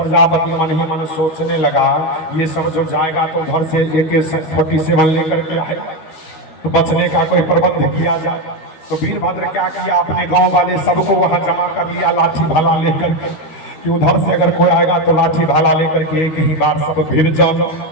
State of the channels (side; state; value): right; late; 13 ms